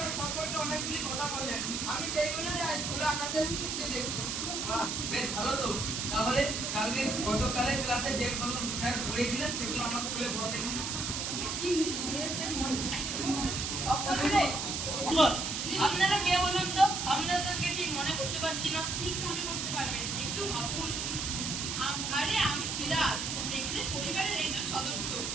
সম্পর্কে অনেকগুলি কথা বললেন। আমি সেইগুলো আজ খোলা আকাশের নিচে দেখছি। বেশ ভালো তো। তাহলে গতকালের ক্লাসে যেগুলো স্যার পড়িয়েছিলেন সেগুলো আমাকে খুলে বল দেখুন। আপনারা কে বলুন তো? আপনাদেরকে ঠিক মনে করতে পারছি না। ঠিক মনে করতে পারবেন, একটু ভাবুন। আরে আমি সিরাজ, মেঘদের পরিবারের একজন সদস্য।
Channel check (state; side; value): noise; right; hiss, 2 dB below the sound